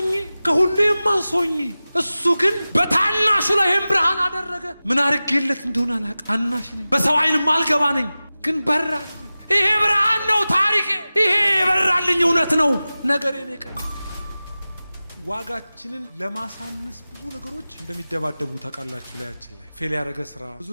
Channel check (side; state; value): both; inverted; correlation -0.96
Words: ከሁሉ የማንስ ሆኜ። እሱ ግን በታናሹ ላይ ይህን ብርሃን አደረገ። ምን አድርጌለት እንደሆነ አላውቅም። ታናሽ ነኝ፣ በሰው ዓይን ማልገባ ነኝ፣ ግን በራል። ይሄ ብርሃን ነው ታሪኬ። ይሄ የበራልኝ እውነት ነው ነገሬ ነው ቀይ። ዋጋችንን ለማሳነስ ብዙ ነገሮች እንደሚደባደቡ ታውቃላችሁ። ላያችን ላይ ፌል ያደረገ ስራ፣